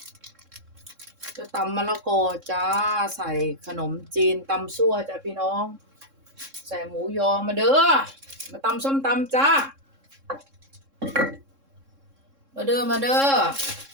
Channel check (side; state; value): left; late; 3.6 ms